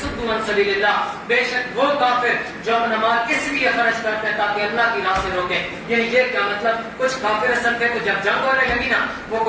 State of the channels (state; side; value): identical; both; correlation 1.00